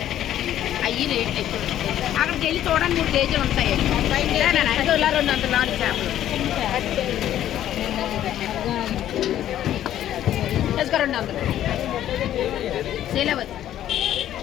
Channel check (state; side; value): quieter; right; 11.9 dB